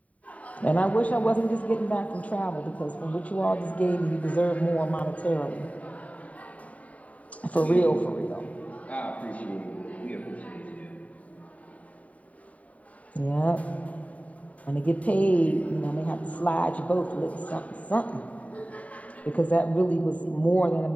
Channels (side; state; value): right; late; 0.068 ms